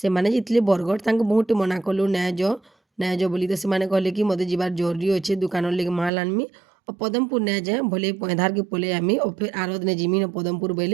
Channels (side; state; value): left; drops out; at 6.1 s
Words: ଯାଇଥିଲେ ବରଗଡ଼ ତାଙ୍କୁ ବହୁତ ମନା କଲୁ ନାଇଁ ଯ ବୋଲି ତ ସେମାନେ କହିଲେ କି ମୋତେ ଯିବାର ଜରୁରୀ ଅଛେ ଦୋକାନର ଲାଗି ମାଲ ଆନମି ଆଉ ପଦମପୁର ନାଇଁ ଯାଏ ଭଲେ ପଇଁଧାରକେ ପଲେଇ ଆମି ଆଉ ଫେର୍ ଆର ଦିନେ ଯିମି ପଦମପୁର